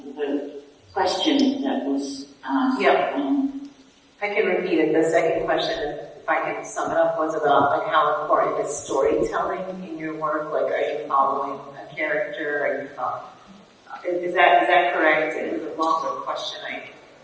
the question that was asked. Yep. I can repeat it. The second question, if I can sum it up, was about like how important is storytelling in your work? Like, are you following a character? Are you following? Is that correct? It was a longer question.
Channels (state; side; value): identical; both; correlation 1.00